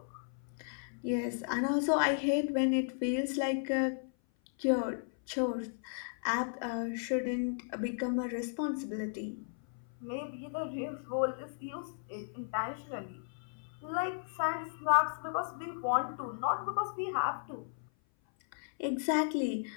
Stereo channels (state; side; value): silent; right; 54 dB below the other